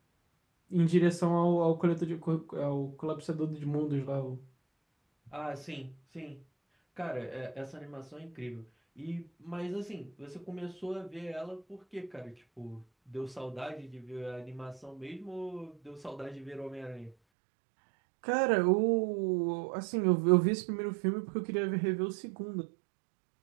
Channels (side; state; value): left; drops out; at 17.2 s